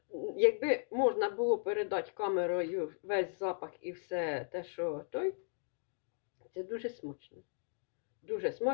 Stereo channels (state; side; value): silent; right; digital silence